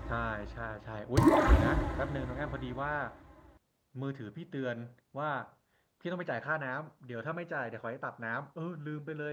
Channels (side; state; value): both; identical; correlation 1.00